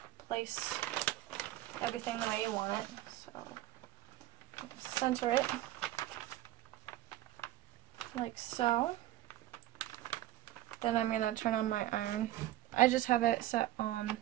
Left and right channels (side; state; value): left; quieter; 14.9 dB